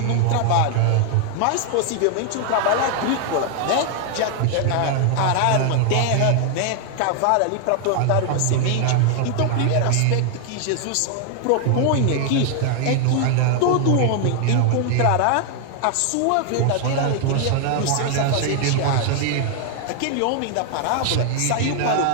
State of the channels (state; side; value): different; both; correlation 0.00